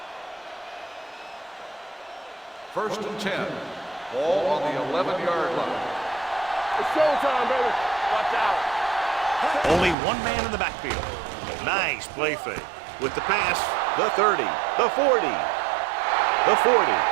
First and 10. Ball on the 11-yard line. It's showtime, baby! Watch out! Only one man in the backfield. Nice play fake. With the pass, the 30, the 40, the 40,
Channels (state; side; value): drops out; left; at 10.0 s